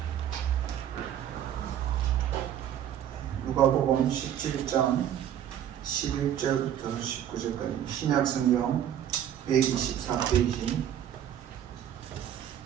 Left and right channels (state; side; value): quieter; left; 10.4 dB